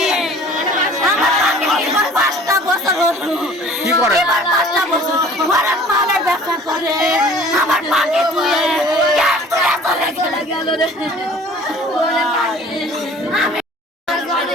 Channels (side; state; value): both; normal; correlation 0.49